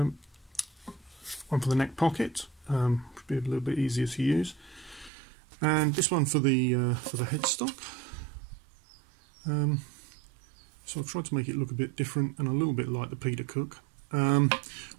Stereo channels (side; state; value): left; drops out; at 5.1 s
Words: One for the neck pocket, should be a little bit easier to use, and this one for the headstock. So I've tried to make it look a bit different and a little bit like the Peter Cook.